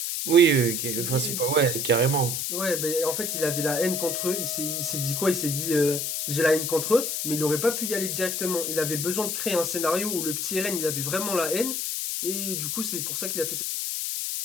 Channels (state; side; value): noise; left; hiss, 1 dB below the sound